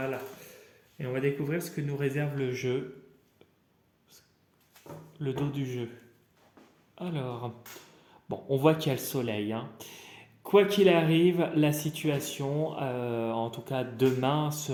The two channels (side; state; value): both; identical; correlation 1.00